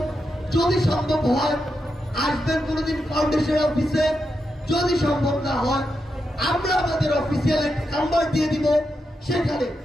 যদি সম্ভব হয় আসবেন কোনোদিন ফাউন্ডেশন অফিসে। যদি সম্ভব না হয় আমরা আমাদের অফিসিয়াল একটা নাম্বার দিয়ে দিব, সেখানে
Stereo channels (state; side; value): normal; both; correlation 0.86